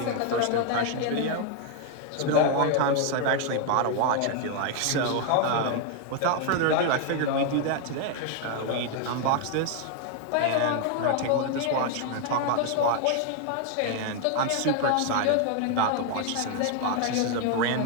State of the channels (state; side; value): different; both; correlation 0.00